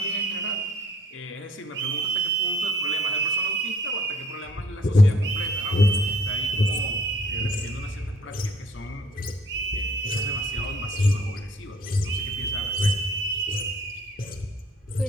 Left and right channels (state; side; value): normal; both; correlation 0.59